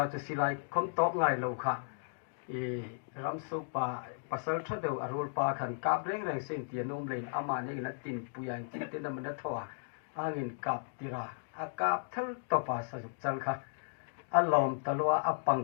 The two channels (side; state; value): right; silent; digital silence